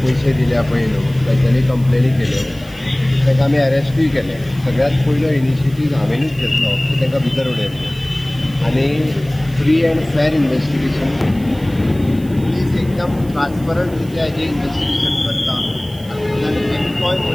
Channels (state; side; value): noise; right; hiss, 24 dB below the sound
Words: पयशे दिल्या पळय न्हू तेंच्यांनी कंप्लेनी केल्यो, तांकां आमी अरेस्टूय केले। सगळ्यात पयलो इनिशिएटीव हांवेनूच घेतलो की तांकां भितर उडयलें आनी फ्री एंड फेर इन्वेस्टिगेशन प्लीज एकदम ट्रान्सपरंट रित्या हेजें इन्वेस्टिगेशन करता आनी एकटोय